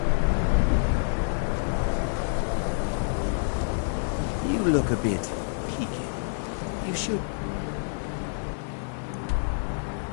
You look a bit peaked. You should...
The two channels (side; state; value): right; silent; digital silence